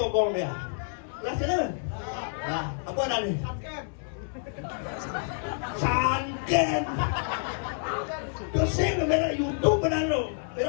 dia. Kelas channel? Nah, apa ada nih? Sanken. Dosen kamera YouTube benar lo,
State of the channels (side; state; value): right; silent; 59 dB below the other